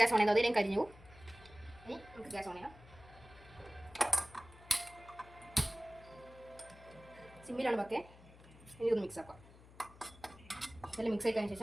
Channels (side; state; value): left; noise; hum, 21 dB below the sound